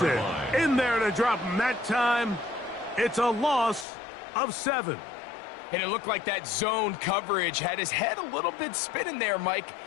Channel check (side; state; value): right; drops out; at 3.9 s